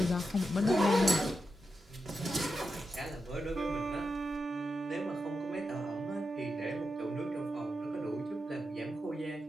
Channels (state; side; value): normal; both; correlation 0.88